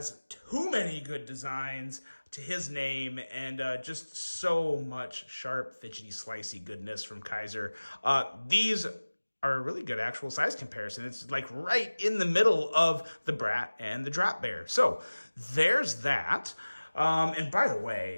too many good designs to his name, and just so much sharp, fidgety, slicey goodness from Kizer. These are a really good actual size comparison. It's like right in the middle of the Brat and the Drop Bear. So there's that. And by the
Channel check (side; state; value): both; inverted; correlation -1.00